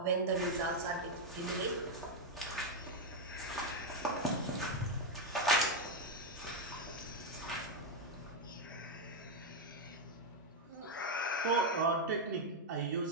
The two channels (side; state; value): both; normal; correlation 0.03